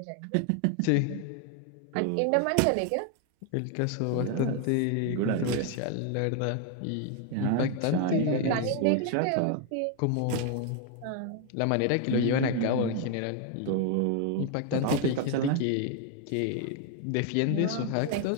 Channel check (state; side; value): different; both; correlation 0.01